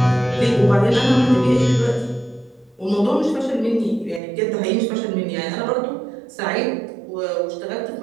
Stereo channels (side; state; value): left; drops out; at 4.2 s